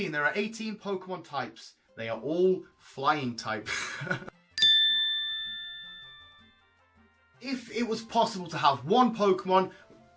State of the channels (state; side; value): identical; both; correlation 1.00